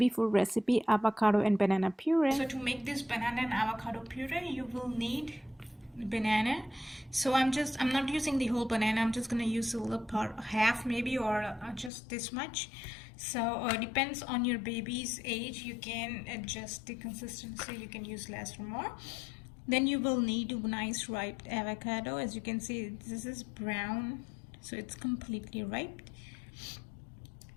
food recipe, avocado and banana puree. So to make this banana and avocado puree, you will need banana. So I'm not using the whole banana. I'm just gonna use a little part, half maybe, or just this much. So depends on your baby's age. You can adjust the consistency. You can use less or more. Then you will need a nice ripe avocado. As you can see, this is brown, so it's completely ripe.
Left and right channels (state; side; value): drops out; right; at 11.9 s